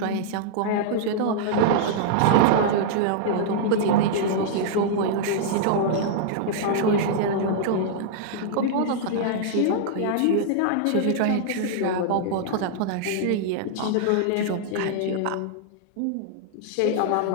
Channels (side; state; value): both; different; correlation -0.01